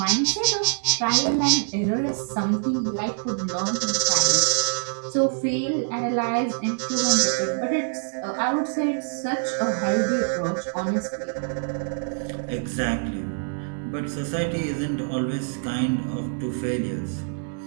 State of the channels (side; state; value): left; silent; 62 dB below the other